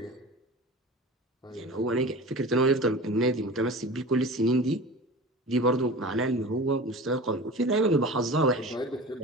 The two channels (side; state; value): both; normal; correlation 0.35